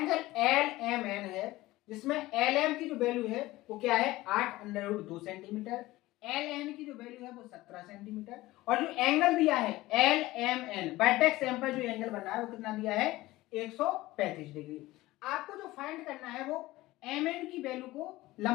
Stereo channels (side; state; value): right; quieter; 18.1 dB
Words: एल एम एन है, जिसमें एल एम की जो वैल्यू है वो क्या है, 8√2 सेंटीमीटर, एल एन की जो वैल्यू है वो 17 सेंटीमीटर, और जो एंगल दिया है L M N, vertex M पर जो एंगल बन रहा है वो कितना दिया है, 135 डिग्री। आपको जो फाइंड करना है वो एम एन की वैल्यू को,